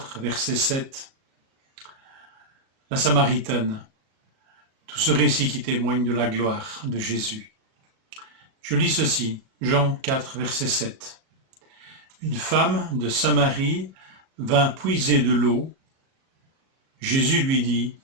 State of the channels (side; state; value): left; late; 37 ms